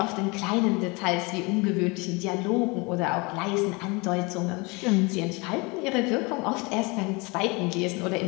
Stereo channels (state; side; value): quieter; right; 27.4 dB